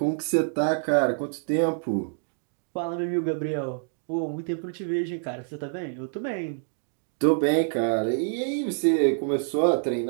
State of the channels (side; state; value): left; silent; digital silence